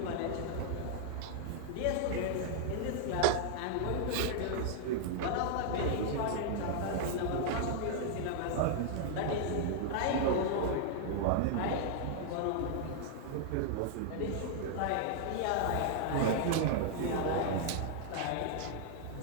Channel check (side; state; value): both; different; correlation -0.01